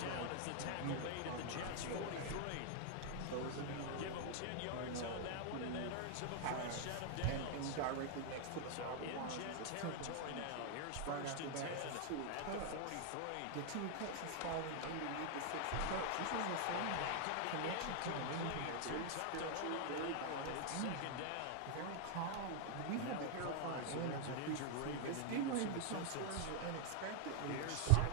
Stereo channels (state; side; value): different; both; correlation 0.00